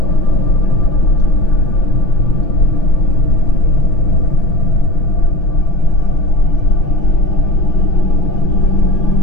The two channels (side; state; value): right; late; 6.0 ms